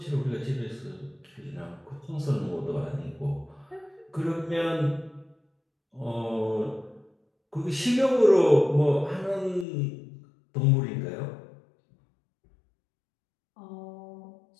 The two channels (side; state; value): right; drops out; at 9.7 s